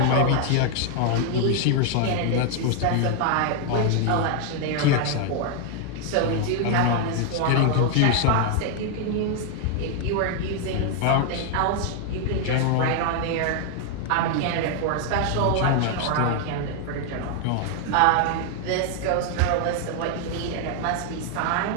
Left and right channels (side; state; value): both; different; correlation 0.00